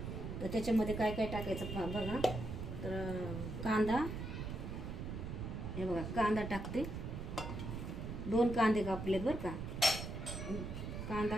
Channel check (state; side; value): noise; right; rumble, 5 dB below the sound